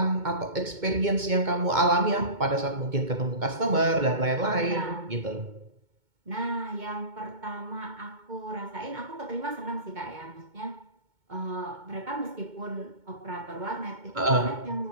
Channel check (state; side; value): late; left; 2.2 ms